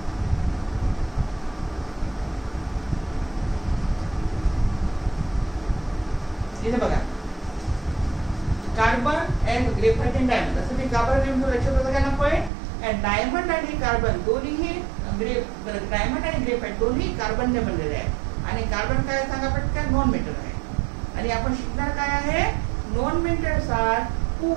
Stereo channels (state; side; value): drops out; left; at 12.5 s